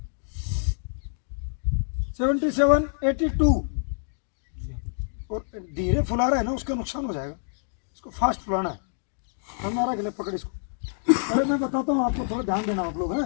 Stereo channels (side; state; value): right; silent; digital silence